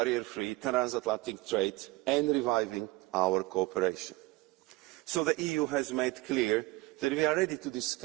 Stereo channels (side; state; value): left; quieter; 21.1 dB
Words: transatlantic trade and reviving our cooperation. So the EU has made clear that we are ready to